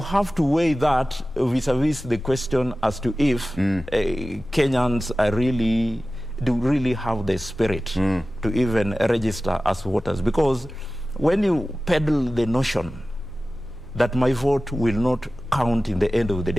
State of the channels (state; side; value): noise; left; hum, 23 dB below the sound